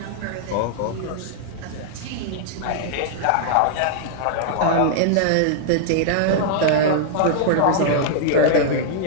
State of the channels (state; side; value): different; both; correlation -0.01